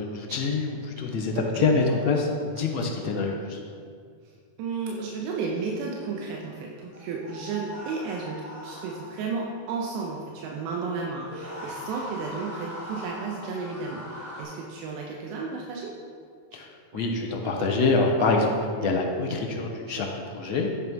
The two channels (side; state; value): left; late; 18 ms